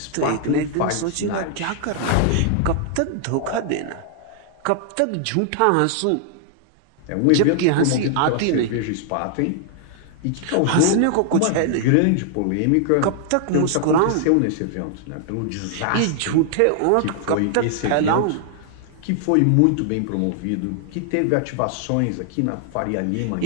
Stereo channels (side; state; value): both; different; correlation 0.00